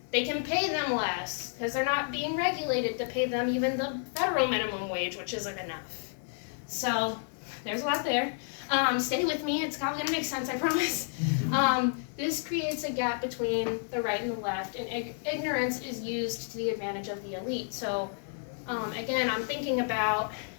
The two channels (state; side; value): silent; right; 57 dB below the other